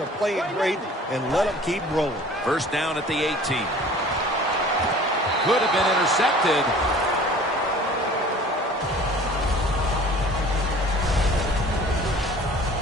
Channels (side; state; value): both; normal; correlation 0.47